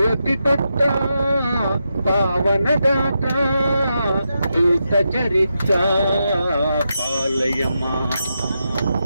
ಪುತ್ರ ಪಾವನದಾತ ದೂತ ಚರಿತ್ರ ಪಾಲಯಮ.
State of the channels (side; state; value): both; inverted; correlation -0.86